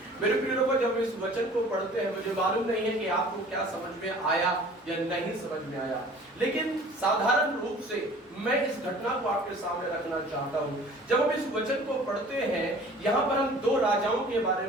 मेरे प्रिय लोगों, जब इस वचन को पढ़ते हैं मुझे मालूम नहीं है कि आपको क्या समझ में आया या नहीं समझ में आया, लेकिन साधारण रूप से मैं इस घटना को आपके सामने रखना चाहता हूँ। जब हम इस वचन को पढ़ते हैं, यहाँ पर हम दो राजाओं के बारे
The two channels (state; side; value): normal; both; correlation 0.48